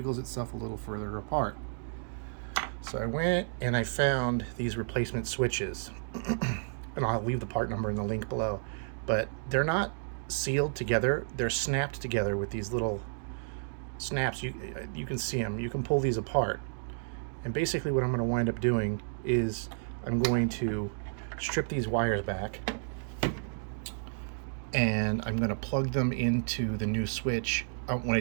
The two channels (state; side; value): silent; left; digital silence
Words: itself a little further apart. So I went and I found these replacement switches, and I'll leave the part number in the link below, but they're not sealed together. They're snapped together with these little snaps. You can see them. You can pull these apart. And basically what I'm going to wind up doing is I'm going to strip these wires back, and I'm going to plug them into the new switch when I